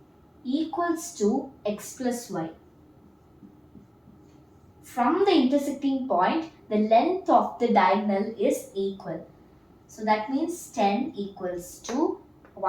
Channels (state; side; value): identical; both; correlation 1.00